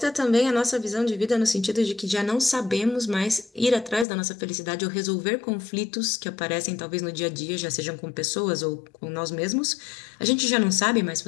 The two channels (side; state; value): right; drops out; at 4.0 s